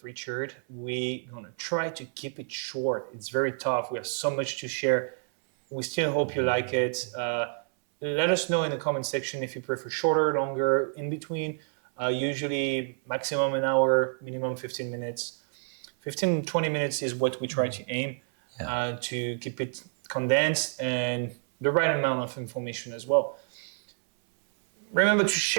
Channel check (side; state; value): left; silent; 57 dB below the other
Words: Richard. We're going to try to keep it short. It's very tough. We have so much to share. We still hope you like it. Let us know in the comment section if you prefer shorter, longer, in between. Usually maximum an hour, minimum 15 minutes. 15, 20 minutes is what we try to aim to keep it condensed and the right amount of information as well. Remember to